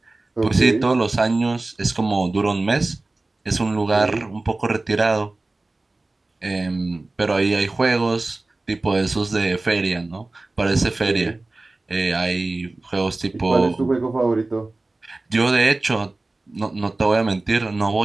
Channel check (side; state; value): left; quieter; 3.1 dB